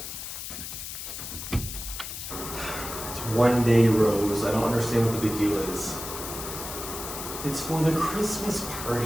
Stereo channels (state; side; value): noise; left; hiss, 8 dB below the sound